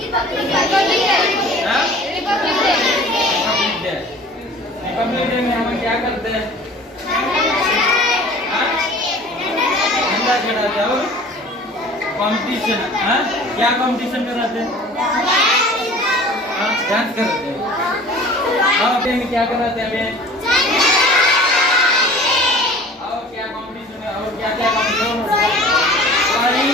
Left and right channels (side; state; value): both; normal; correlation 0.44